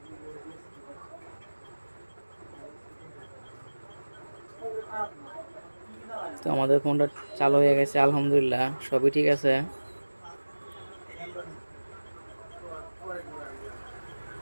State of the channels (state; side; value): inverted; both; correlation -1.00